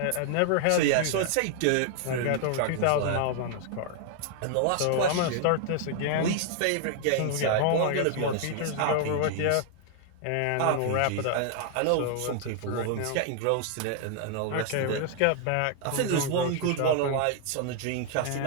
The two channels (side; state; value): both; different; correlation 0.00